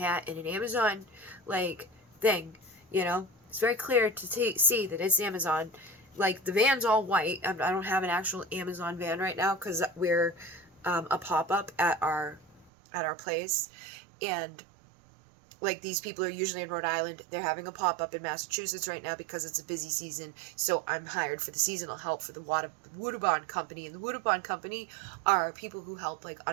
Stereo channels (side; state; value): left; drops out; at 12.7 s